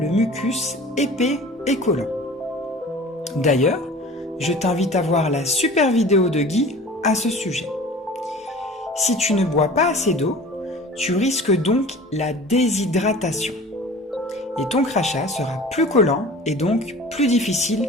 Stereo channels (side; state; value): both; normal; correlation 0.42